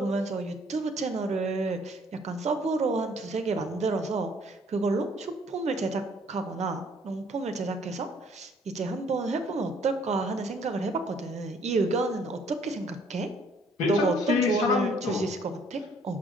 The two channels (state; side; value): normal; both; correlation 0.61